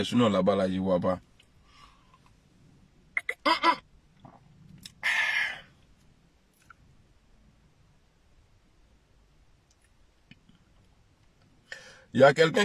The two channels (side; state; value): both; identical; correlation 1.00